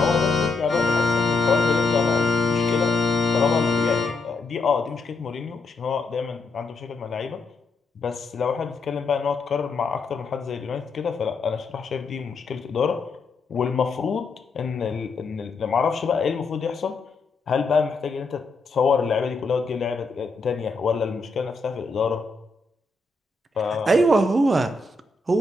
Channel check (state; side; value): quieter; right; 3.5 dB